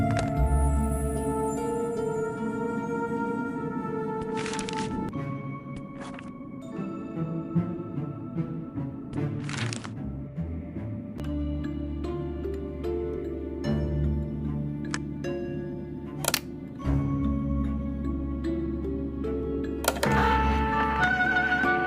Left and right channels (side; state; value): both; identical; correlation 1.00